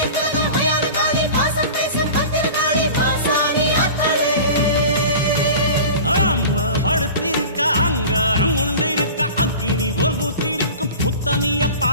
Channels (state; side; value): inverted; both; correlation -0.36